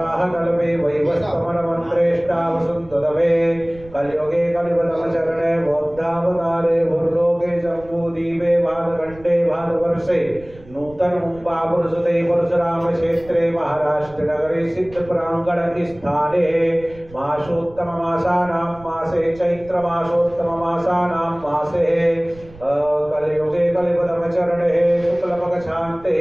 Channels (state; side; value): noise; right; rumble, 21 dB below the sound